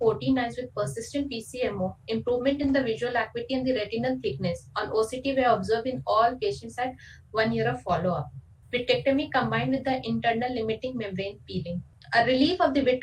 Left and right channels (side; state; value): both; identical; correlation 1.00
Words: eyes with persistent PCMO, improvement in the visual acuity and the retinal thickness on OCT were observed in all patients at 1 year of follow-up. Vitrectomy combined with the internal limiting membrane peeling. A relief of the